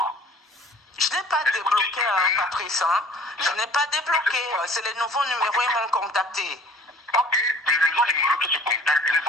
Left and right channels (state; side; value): normal; both; correlation 0.50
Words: Je n'ai pas débloqué, Patrice. Hein? Je n'ai pas débloqué. C'est les nouveaux numéros, ils m'ont contacté. Ok, les nouveaux numéros que tu contactes, les